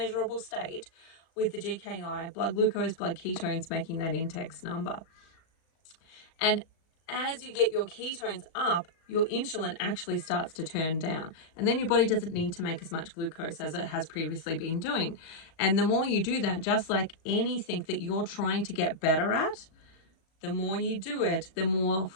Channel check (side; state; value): right; late; 36 ms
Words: state with the GKI, blood glucose, blood ketones, making that index number. And as you get your ketones up, your insulin actually starts to turn down. And then your body doesn't need to make as much glucose as it has previously been doing. And the more you do that, just like anything that you're trying to get better at, the more you do it, the more